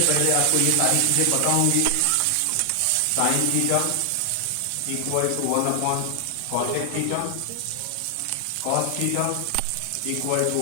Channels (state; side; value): different; both; correlation 0.00